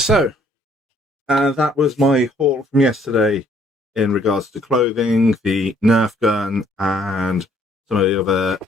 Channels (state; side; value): normal; both; correlation 0.64